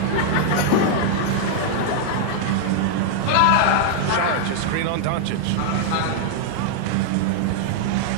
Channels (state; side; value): different; both; correlation -0.01